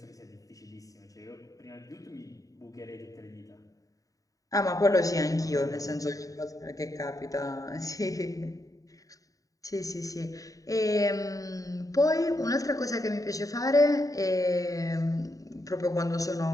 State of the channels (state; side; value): late; right; 0.16 ms